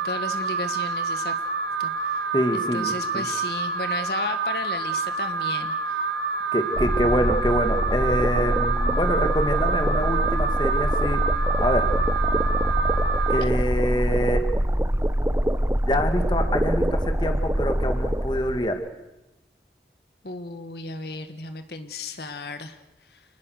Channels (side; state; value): both; normal; correlation 0.57